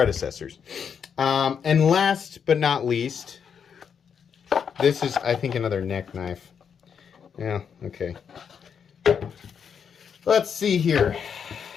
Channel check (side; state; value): right; quieter; 7.1 dB